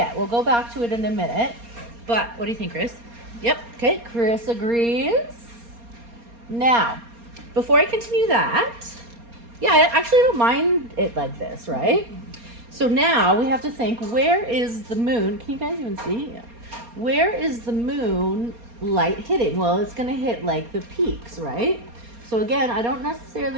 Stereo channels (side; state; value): left; late; 4.3 ms